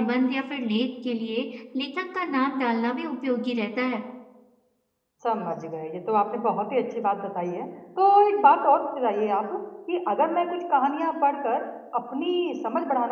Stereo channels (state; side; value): identical; both; correlation 1.00